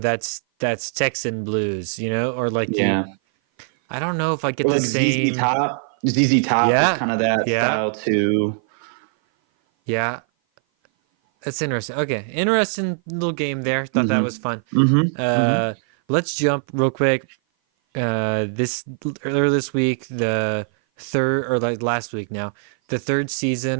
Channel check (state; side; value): silent; left; 57 dB below the other